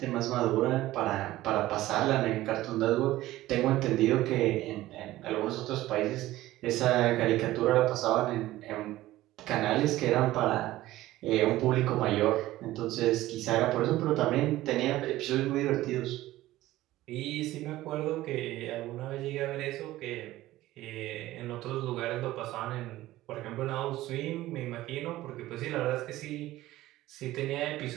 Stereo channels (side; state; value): left; quieter; 16.1 dB